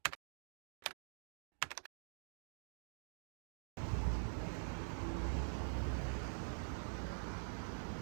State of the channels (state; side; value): silent; left; digital silence